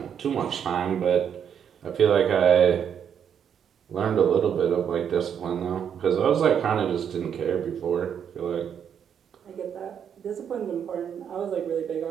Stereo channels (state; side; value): quieter; left; 8.2 dB